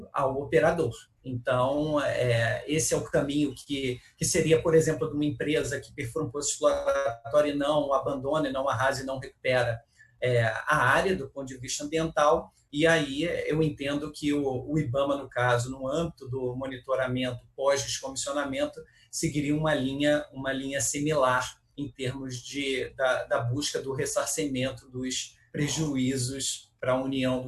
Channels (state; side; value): identical; both; correlation 1.00